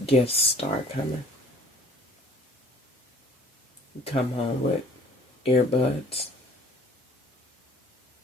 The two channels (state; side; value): normal; both; correlation 0.52